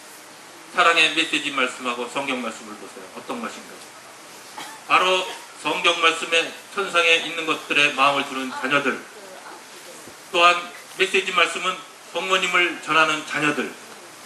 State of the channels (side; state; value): both; identical; correlation 1.00